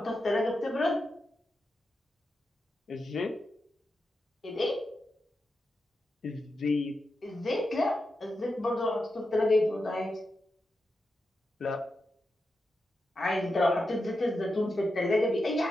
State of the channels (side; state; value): both; normal; correlation 0.89